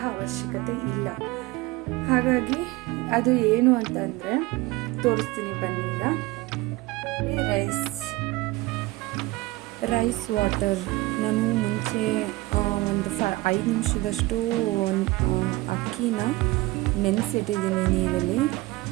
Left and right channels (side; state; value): left; quieter; 20.3 dB